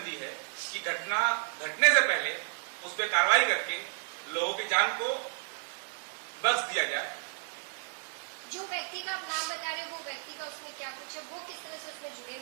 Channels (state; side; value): silent; left; 56 dB below the other